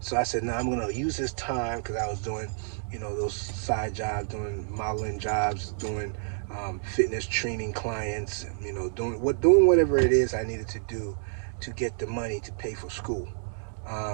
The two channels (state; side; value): silent; left; digital silence